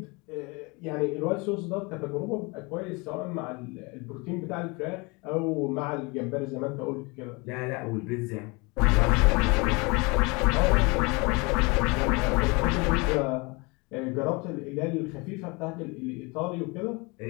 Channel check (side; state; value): right; quieter; 27.6 dB